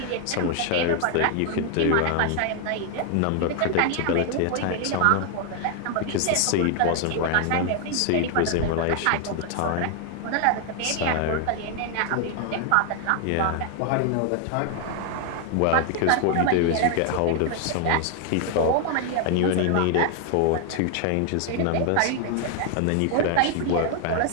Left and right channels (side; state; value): both; different; correlation 0.00